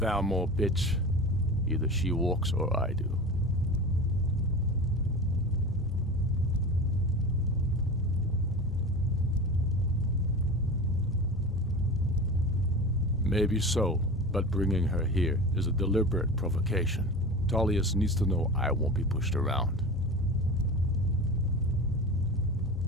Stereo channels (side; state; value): both; normal; correlation 0.31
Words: bitch. Either she walks or I do. Maybe so, but bringing her here is a deliberate provocation. Tullius needs to know I won't be pushed around.